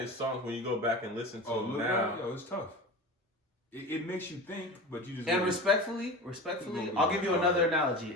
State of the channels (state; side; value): normal; both; correlation 0.31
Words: songs when you go back and listen to them now. Yo, it's tough. It makes you think, but you just. And respectfully, I'll give you another analogy.